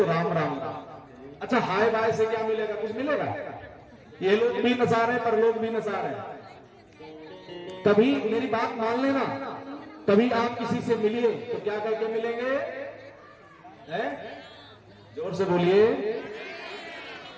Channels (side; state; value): both; identical; correlation 1.00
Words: राम राम का। अच्छा हाय बाय से क्या मिलेगा? कुछ मिलेगा? ये लोग भी नसा रहे पर लोग भी नसा रहे। कभी मेरी बात मान लेना, कभी आप किसी से मिलिए तो क्या करके मिलेंगे? जोर से बोलिए।